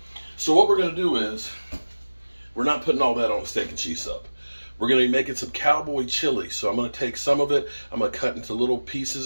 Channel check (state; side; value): inverted; both; correlation -1.00